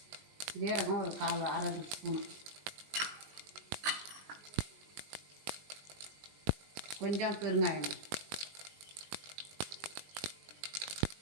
ஒரு 1/2 ஸ்பூன், கொஞ்சம் பெருங்காயம்,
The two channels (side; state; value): left; late; 20 ms